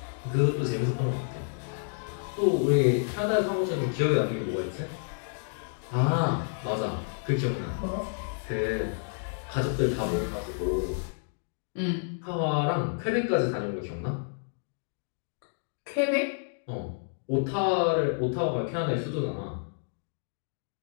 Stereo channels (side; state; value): right; silent; digital silence